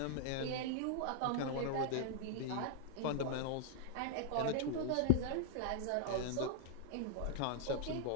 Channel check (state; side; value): different; both; correlation -0.01